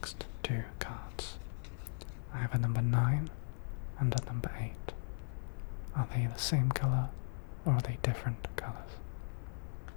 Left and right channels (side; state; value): right; silent; 52 dB below the other